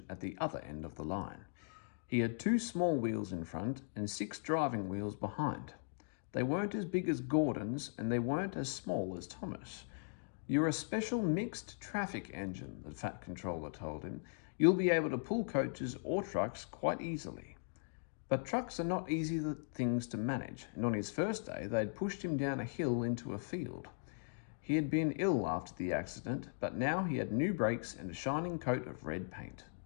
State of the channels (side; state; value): right; silent; digital silence